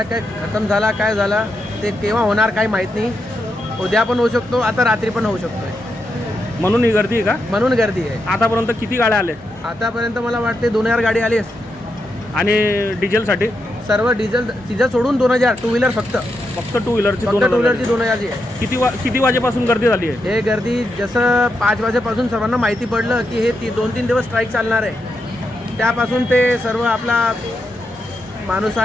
काय खतम झाला काय झाला ते केव्हा होणार काही माहीत नाही. उद्या पण होऊ शकतो, आता रात्री पण होऊ शकतो. म्हणून ही गर्दी आहे का? म्हणून गर्दी आहे. आतापर्यंत किती गाड्या आल्या? आतापर्यंत मला वाटते 2000 गाडी आली आहे. आणि डिझेलसाठी सर्व डिझेल सोडून 2000 टू व्हीलर फक्त टू व्हीलरची 2000 जी आहे. किती वाजेपासून गर्दी झाली आहे? हे गर्दी जसं 5 वाजेपासून सर्वांना माहिती पडलं की हे 2-3 दिवस स्ट्राईक चालणार आहे, त्यापासून ते सर्व आपला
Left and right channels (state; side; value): normal; both; correlation 0.84